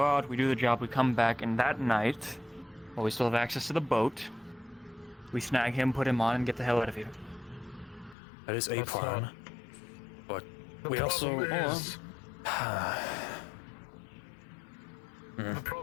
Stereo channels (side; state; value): right; drops out; at 8.2 s